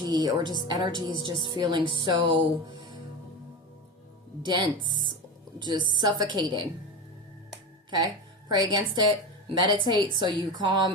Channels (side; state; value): both; normal; correlation 0.23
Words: or just energy is just feeling so dense, just suffocating. Okay? Pray against it. Meditate so you